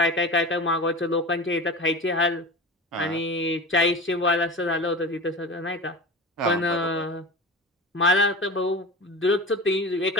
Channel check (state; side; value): normal; both; correlation 0.31